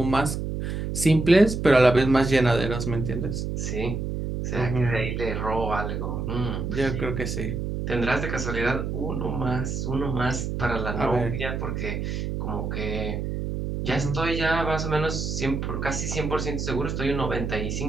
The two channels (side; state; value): right; noise; hum, 3 dB below the sound